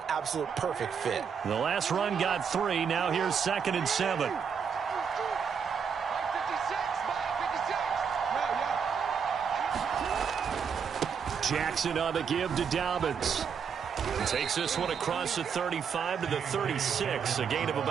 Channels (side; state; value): left; quieter; 6.8 dB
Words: absolute perfect fit. The last run got 3. Now here's 2nd and 7. Jackson on the give to Dobbins. Takes this one across the 35 to the 36, a gain of